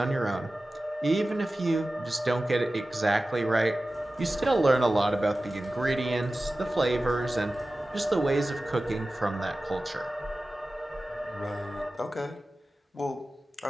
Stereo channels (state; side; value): normal; both; correlation 0.95